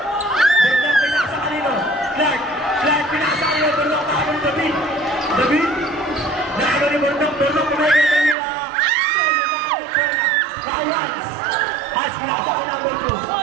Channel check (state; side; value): drops out; left; at 8.3 s